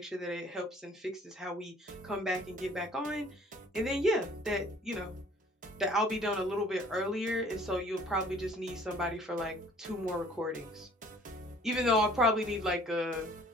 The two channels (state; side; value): normal; both; correlation 0.54